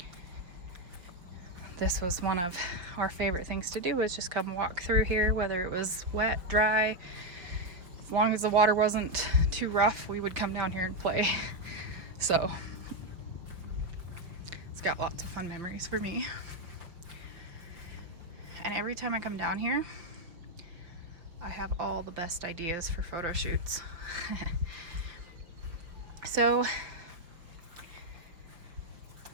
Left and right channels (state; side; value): late; left; 5.6 ms